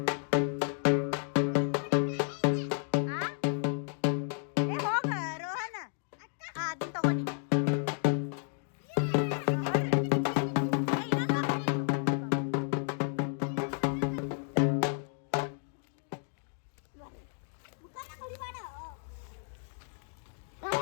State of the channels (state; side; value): silent; right; 56 dB below the other